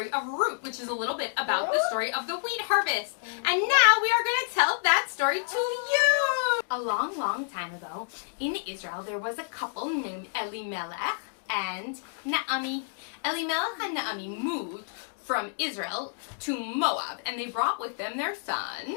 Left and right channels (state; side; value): silent; right; digital silence